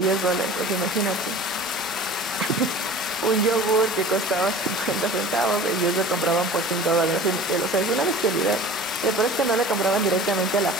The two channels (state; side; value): normal; both; correlation 0.41